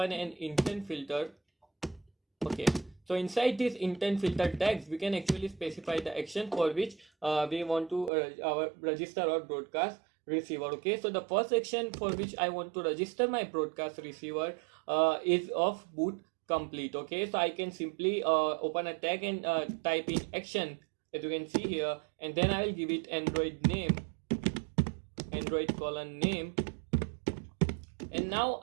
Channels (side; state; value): left; drops out; at 8.1 s